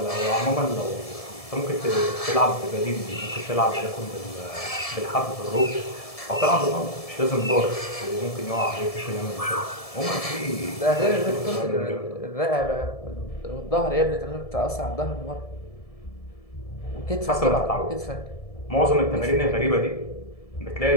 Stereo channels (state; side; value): late; right; 1.7 ms